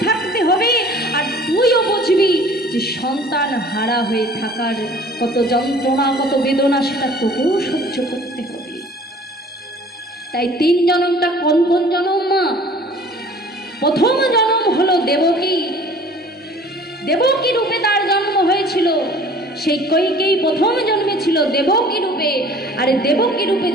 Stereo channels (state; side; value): normal; both; correlation 0.49